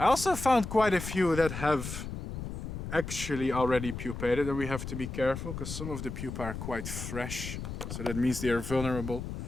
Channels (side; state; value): left; noise; rumble, 7 dB below the sound